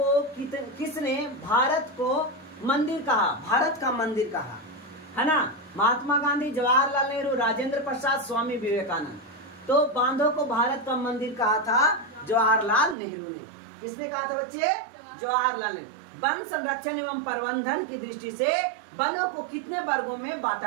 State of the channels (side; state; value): left; drops out; at 13.0 s